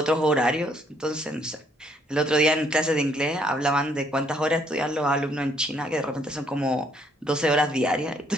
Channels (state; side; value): normal; both; correlation 0.67